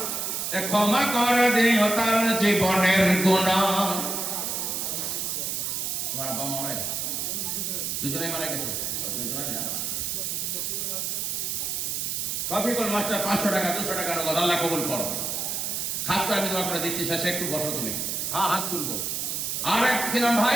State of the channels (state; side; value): noise; right; hiss, 1 dB below the sound